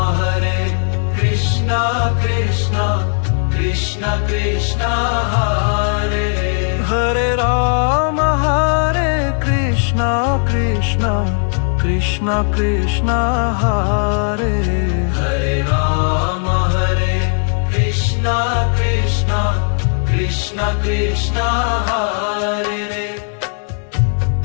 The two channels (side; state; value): right; silent; 67 dB below the other